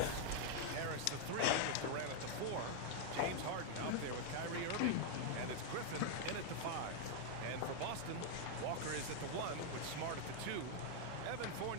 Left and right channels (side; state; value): both; different; correlation 0.00